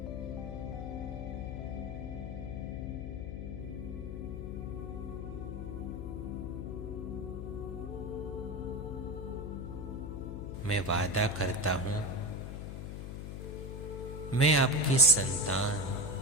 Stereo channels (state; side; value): noise; left; hum, 6 dB below the sound